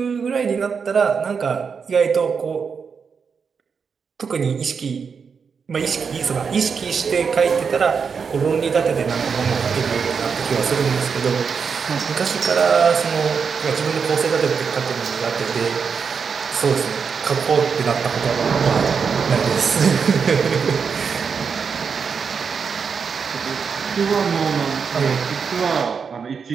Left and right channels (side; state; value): left; quieter; 6.0 dB